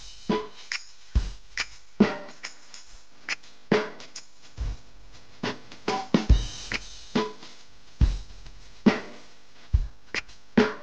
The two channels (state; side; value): identical; both; correlation 1.00